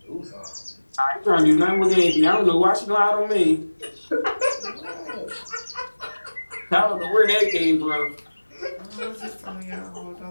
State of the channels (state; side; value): inverted; both; correlation -1.00